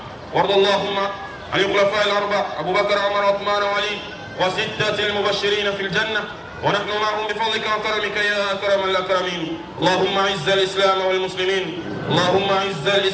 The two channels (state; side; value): identical; both; correlation 1.00